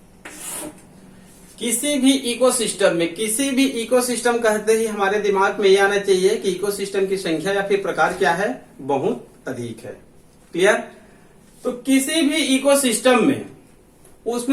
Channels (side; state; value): both; identical; correlation 1.00